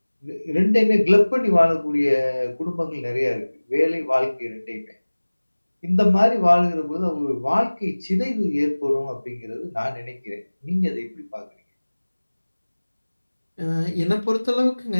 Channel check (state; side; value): inverted; both; correlation -1.00